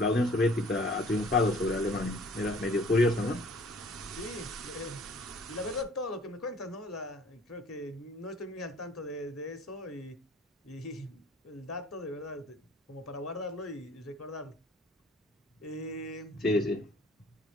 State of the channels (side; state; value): both; normal; correlation 0.53